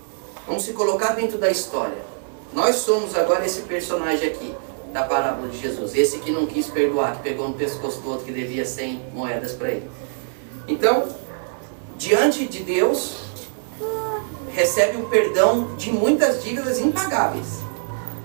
Vamos se colocar dentro da história. Nós somos agora esse personagem aqui, da parábola de Jesus. Esse que não quis perdoar, que pegou no pescoço do outro que devia 100 moedas para ele. Então, diante de Deus, recebe um perdão de muitas dívidas impagáveis,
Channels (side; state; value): left; silent; 63 dB below the other